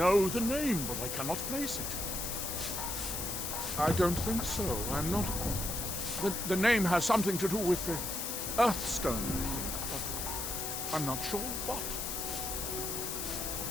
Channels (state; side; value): noise; left; hiss, 3 dB below the sound